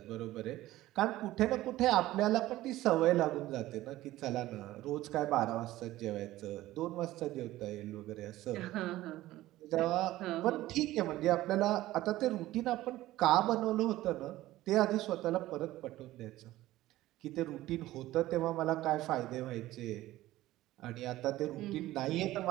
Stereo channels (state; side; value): quieter; left; 16.1 dB